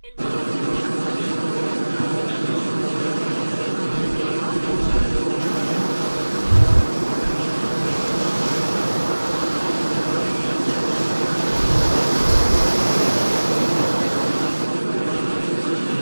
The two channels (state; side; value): inverted; both; correlation -1.00